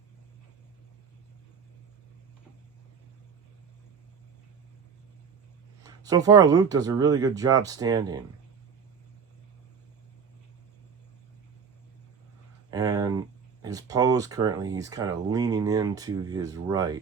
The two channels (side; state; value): left; quieter; 6.3 dB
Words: So far, Luke does a really good job standing. And his pose currently, he's kind of leaning into his